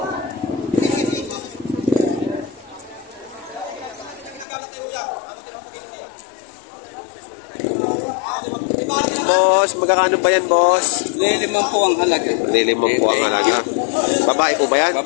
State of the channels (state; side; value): drops out; right; at 4.5 s